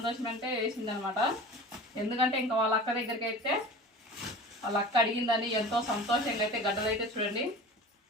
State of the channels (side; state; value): both; normal; correlation 0.37